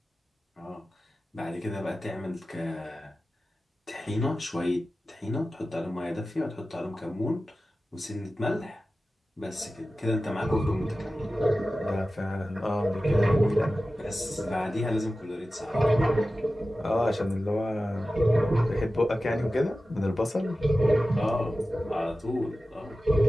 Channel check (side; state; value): both; normal; correlation 0.94